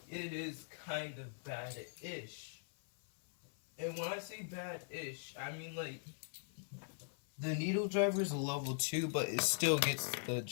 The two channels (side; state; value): right; silent; 50 dB below the other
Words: is kind of bad-ish. And when I say bad-ish, I mean like, the needle driver is a level 2, but it still gets the